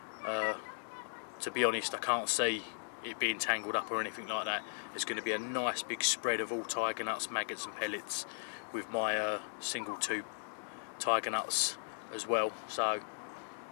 To be honest, I can't see it being tangled up or anything like that. There's going to be a nice big spread of all tiger nuts, maggots and pellets with my single tube tiger nuts as well, so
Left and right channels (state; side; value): silent; right; digital silence